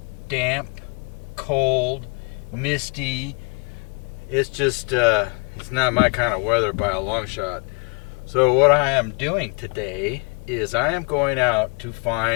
damp, cold, misty. It's just, it's not my kind of weather by a long shot. So what I am doing today is I am going out to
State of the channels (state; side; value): quieter; right; 34.1 dB